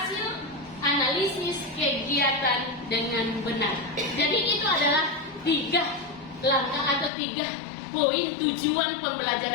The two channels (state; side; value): drops out; right; at 7.1 s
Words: analisis kegiatan dengan benar. Jadi itu adalah 3 langkah atau 3 poin tujuan